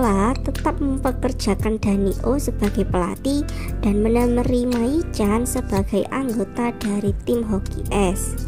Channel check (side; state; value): both; identical; correlation 1.00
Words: tetap mempekerjakan Danio sebagai pelatih dan menerima Yi-chan sebagai anggota dari tim hoki es.